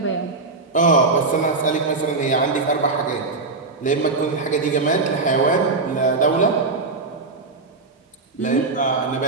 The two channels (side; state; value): left; quieter; 3.7 dB